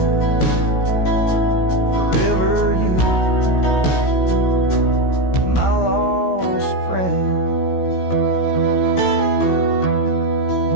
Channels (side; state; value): right; late; 16 ms